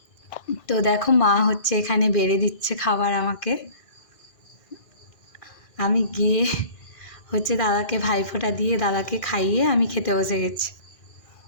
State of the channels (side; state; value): right; late; 1.6 ms